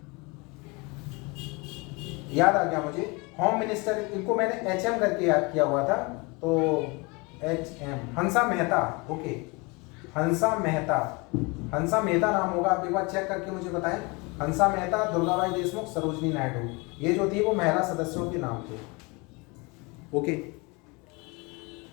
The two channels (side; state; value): right; quieter; 27.5 dB